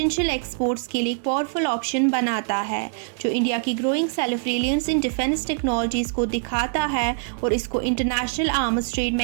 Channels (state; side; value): silent; left; digital silence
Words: एक्सपोर्ट्स के लिए एक पावरफुल ऑप्शन बनाता है, जो इंडिया की growing self reliance in defence technologies को दिखाता है और इसको इंटरनेशनल आर्म्स ट्रेड